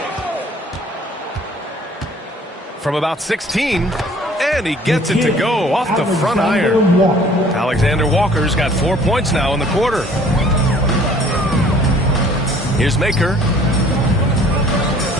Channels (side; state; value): both; normal; correlation 0.54